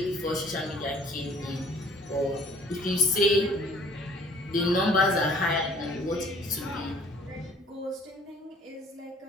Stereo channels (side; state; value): both; normal; correlation 0.55